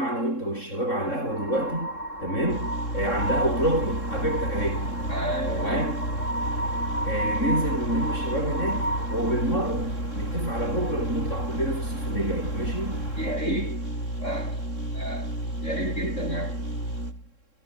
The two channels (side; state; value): right; late; 3.7 ms